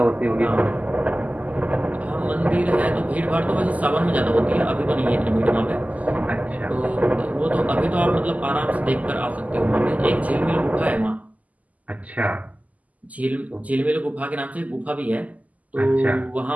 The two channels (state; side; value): late; left; 0.076 ms